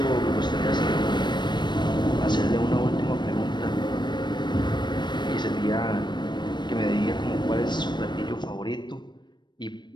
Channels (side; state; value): right; late; 0.22 ms